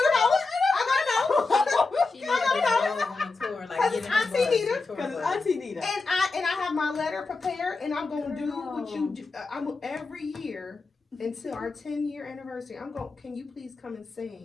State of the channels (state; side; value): quieter; right; 3.9 dB